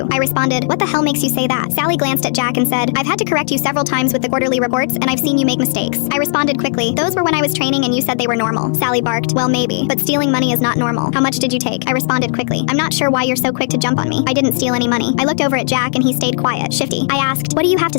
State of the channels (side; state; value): right; silent; digital silence